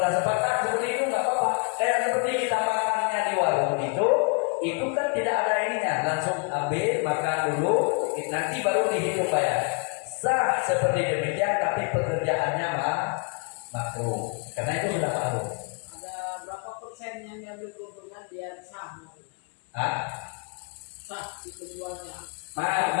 sepakat seperti itu nggak apa-apa. Kayak seperti kita makannya di warung itu kan tidak ada ininya, langsung ambil makan dulu, nanti baru dihitung bayar. Sah seperti demikian, tapi pekerjaannya makruh, karena itu sudah makruh. Ada berapa persen yang diambil keuntungan biar sah? Sah di penjualnya.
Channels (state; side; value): quieter; right; 35.8 dB